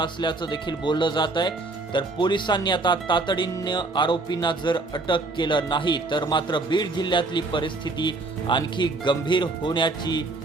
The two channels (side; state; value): left; quieter; 3.3 dB